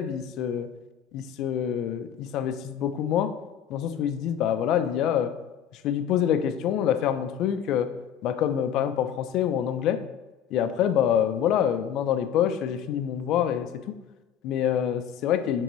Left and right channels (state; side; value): quieter; right; 9.1 dB